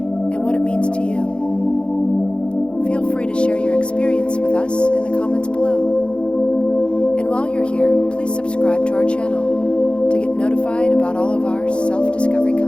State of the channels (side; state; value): right; late; 0.056 ms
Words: and what it means to you. Feel free to share your experience with us in the comments below. And while you're here, please subscribe to our channel to get notified about all of our self-discovery